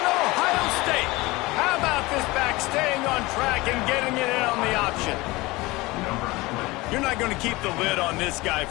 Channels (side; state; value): right; quieter; 21.5 dB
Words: Ohio State. How about this back staying on track and getting it in on the option? You're not going to keep the lid on this guy